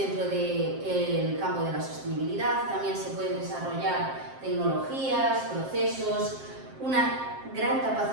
del campo de la sostenibilidad. También se pueden desarrollar tecnologías, procesos, una gran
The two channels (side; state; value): left; late; 7.5 ms